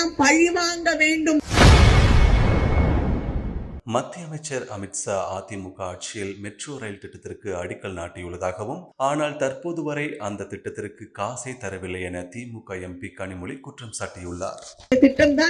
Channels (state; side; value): identical; both; correlation 1.00